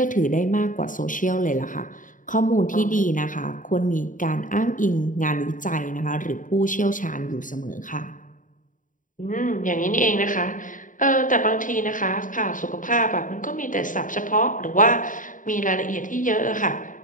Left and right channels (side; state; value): right; late; 0.38 ms